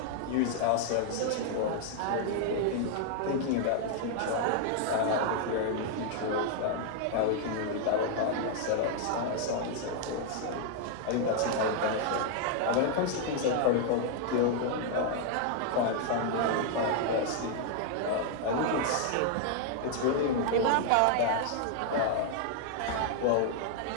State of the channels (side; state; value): both; different; correlation 0.00